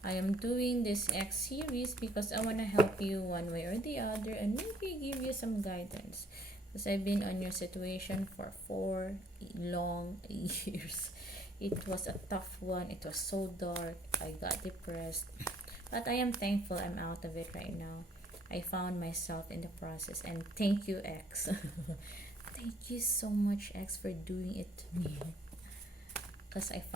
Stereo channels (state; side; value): normal; both; correlation 0.63